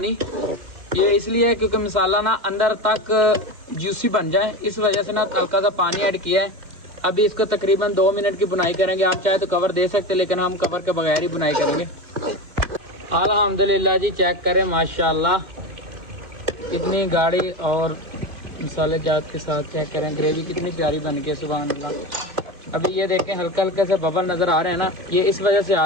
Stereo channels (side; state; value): left; late; 2.1 ms